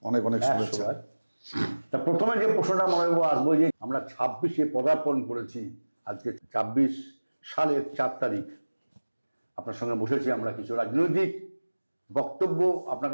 অনেক অনেক শুভেচ্ছা। তা প্রথমে যে প্রশ্নটা মলয়বাবু আসবো, যে আমরা 26-এ পদার্পণ করেছি, আজকে 24 সালের 4 তারিখ। আপনার সঙ্গে বসেছি, আমরা কিছু রাজনৈতিক বক্তব্য আপনার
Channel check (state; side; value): inverted; both; correlation -1.00